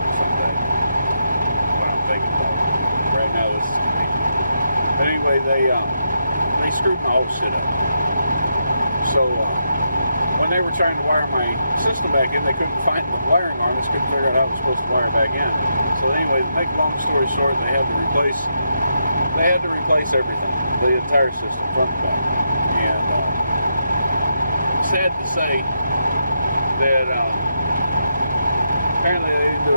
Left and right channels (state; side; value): inverted; both; correlation -0.82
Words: What I'm thinking about. Right now, this is convenient. But anyway, they screwed my whole shit up. So when they were trying to wire my system back in, they couldn't find the wiring harness, couldn't figure out how it was supposed to wire back in. So anyway, to make a long story short, they had to replace everything, the entire system, front to back. And sad to say that apparently they didn't do